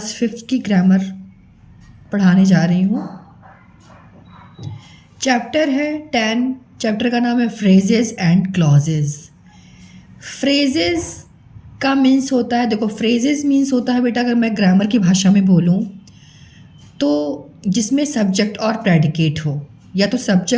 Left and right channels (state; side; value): identical; both; correlation 1.00